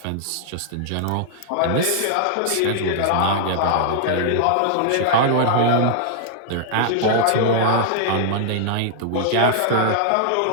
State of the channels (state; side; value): different; both; correlation -0.01